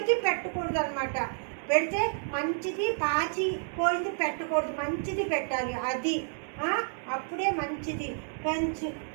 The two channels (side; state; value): left; silent; 58 dB below the other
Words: పెట్టకూడదు అనమాట. పెడితే మంచిది, పాచి పోయింది పెట్టకూడదు, మంచిది పెట్టాలి. అది అప్పుడే మంచిది. మంచి